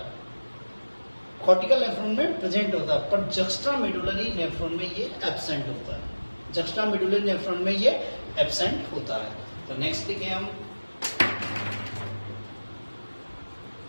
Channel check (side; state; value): both; inverted; correlation -1.00